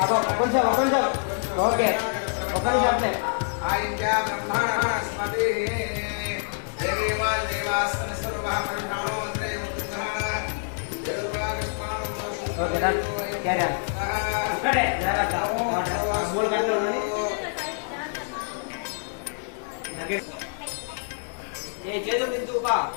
ఒక నిమిషం ఓకే ఒక నిమిషం అంతే ఆయింద్య బ్రహ్మణస్పతి దేవా దేవాస్తన సర్వః పరిణామోంద్రే ముక్తః ఓకే డన్ క్యారీ ఆన్ ఇక్కడే జాగ్రత్త మూల గంటలు ఉన్నది ఏ చేతులు దించుపా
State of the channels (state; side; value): silent; right; digital silence